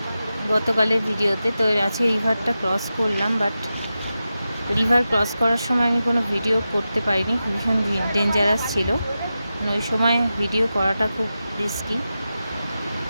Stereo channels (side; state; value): both; inverted; correlation -0.92